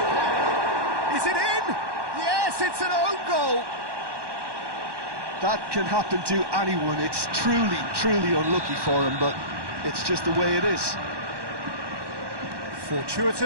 Is it in? Yes, it's an own goal! That can happen to anyone. It's truly, truly unlucky for him, but it's just the way it is.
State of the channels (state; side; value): late; left; 1.1 ms